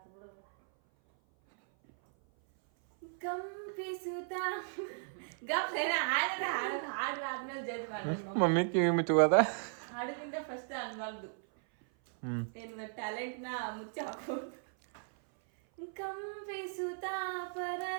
ಕಂಪಿಸುತ್ತ ಗಪ್ಲೇನ ಹಾಡ್ರಾದ್ಮೇಲೆ ಜಡ್ಜ್ ಮಾಡ್ರಿ. ಮಮ್ಮಿ ಕಿವಿ ಮುಚ್ಚುವಾದ ಹಾಡಕ್ಕಿಂತ ಫಸ್ಟ್ ಅನ್ಬಾರ್ದು. ಏನು ಟ್ಯಾಲೆಂಟ್ ನ ಮುಚ್ಚಿ ಹಾಕೋದು. ಕಂಪಿಸುತ್ತ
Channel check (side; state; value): left; silent; 54 dB below the other